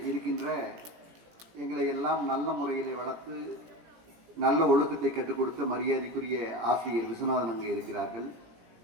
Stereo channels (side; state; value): left; late; 17 ms